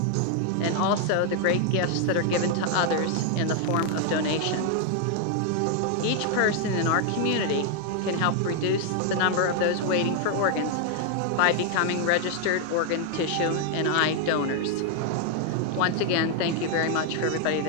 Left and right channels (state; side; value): different; both; correlation 0.00